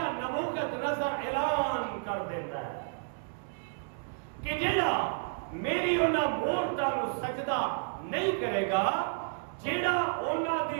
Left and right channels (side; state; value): left; silent; 57 dB below the other